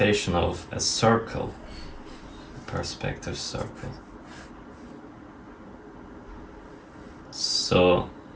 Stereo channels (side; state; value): both; identical; correlation 1.00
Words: of a circle, a perspective circle. So